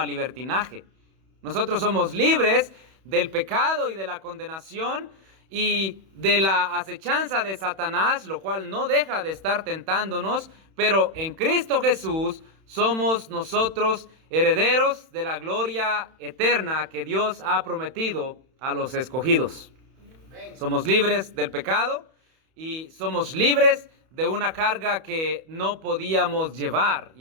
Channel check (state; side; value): late; left; 31 ms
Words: libertinaje. Nosotros somos libres del pecado y de la condenación y de la acechanza de Satanás, lo cual no deja de estar tentándonos, pero en Cristo Jesús somos nosotros herederos de la gloria eterna que Dios ha prometido a los escogidos. Somos libres del pecado y somos libres de una carga que no podíamos llevar,